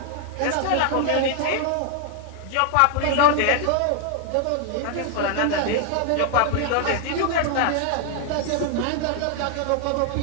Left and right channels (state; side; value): different; both; correlation 0.00